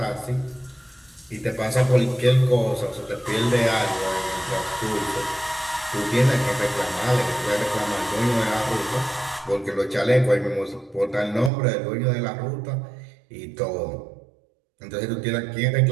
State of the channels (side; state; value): left; drops out; at 11.5 s